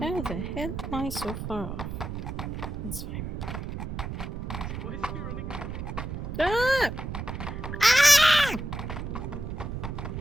hell am I so far off? It's fine. Why is he running away? Ah! Ah!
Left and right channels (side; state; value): right; noise; rumble, 6 dB below the sound